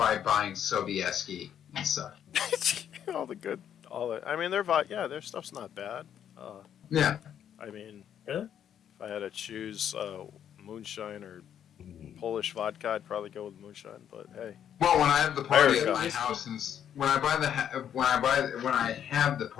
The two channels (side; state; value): right; quieter; 9.4 dB